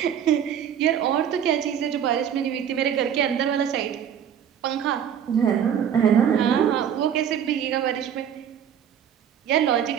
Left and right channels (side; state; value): left; quieter; 8.9 dB